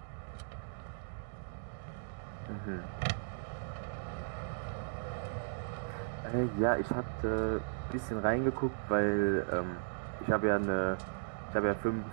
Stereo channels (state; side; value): silent; left; digital silence